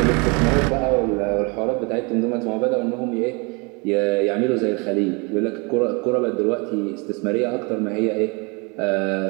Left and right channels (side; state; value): left; quieter; 30.5 dB